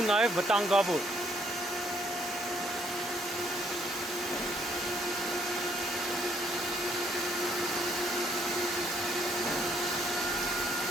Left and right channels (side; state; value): both; normal; correlation 0.68